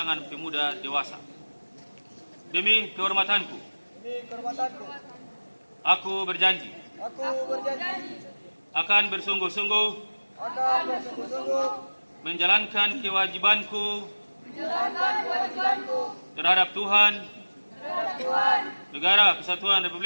pemuda dewasa. Demi kehormatanku, aku berjanji akan bersungguh-sungguh menjalankan kewajibanku terhadap Tuhan, Negara Kesatuan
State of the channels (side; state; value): both; inverted; correlation -1.00